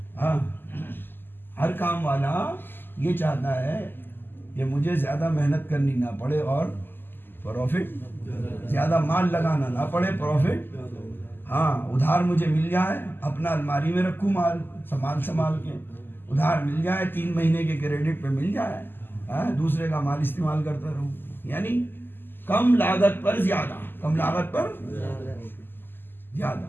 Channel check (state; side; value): late; right; 0.096 ms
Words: ہاں ہر کام والا یہ چاہتا ہے کہ مجھے زیادہ محنت کرنی نہ پڑے اور پروفٹ زیادہ مال لگانا نہ پڑے، پروفٹ ہاں ادھار مجھے مل جائے، اپنا الماری میں رکھوں مال سنبھال کے، ادھار مل جائے، 3 مہینے کے کریڈٹ پہ مل جائے، دوسرے کا مال استعمال کرتا رہوں. یعنی کم لاگت پر زیادہ.